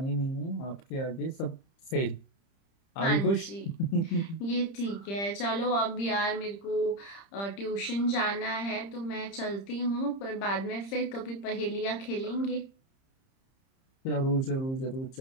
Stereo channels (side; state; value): right; late; 30 ms